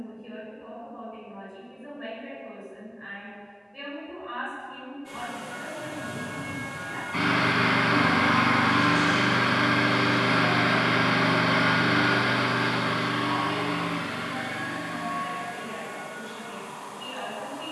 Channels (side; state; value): both; identical; correlation 1.00